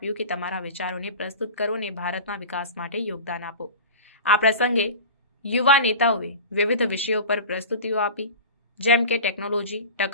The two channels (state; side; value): inverted; both; correlation -0.34